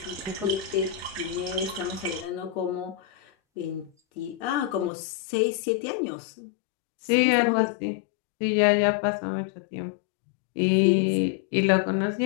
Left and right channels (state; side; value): drops out; right; at 4.9 s